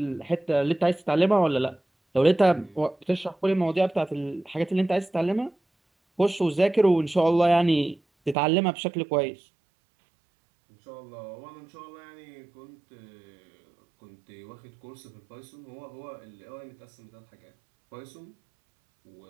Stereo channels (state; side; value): drops out; left; at 8.3 s